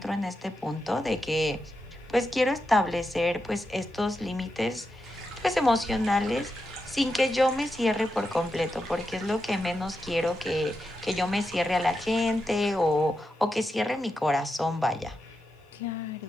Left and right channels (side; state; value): both; normal; correlation 0.87